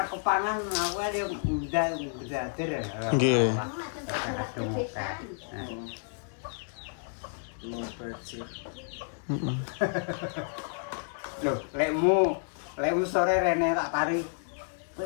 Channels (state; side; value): silent; right; 57 dB below the other